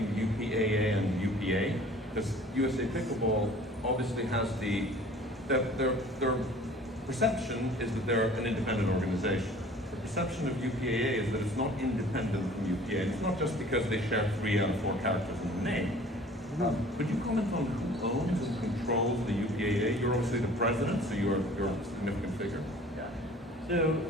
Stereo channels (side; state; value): both; normal; correlation 0.49